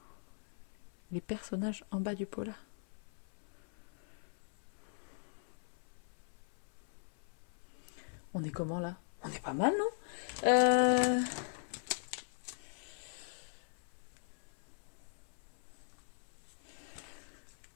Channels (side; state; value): right; silent; 51 dB below the other